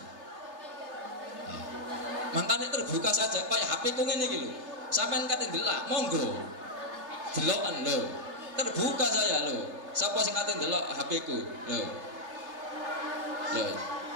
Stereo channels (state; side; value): late; left; 3.2 ms